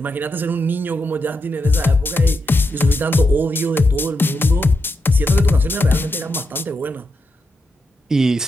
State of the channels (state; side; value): normal; both; correlation 0.85